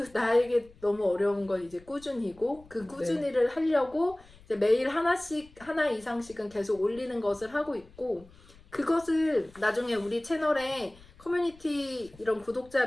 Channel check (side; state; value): left; noise; rumble, 25 dB below the sound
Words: 나에게 너무 어려운 건 이제 꾸준히고 그 꾸준히를 하려고 이제 매일 하나 이상씩은 계속 올리는 것을 하고 있고 그것을 나중에 우리 채널에 커뮤니티 이런 구독자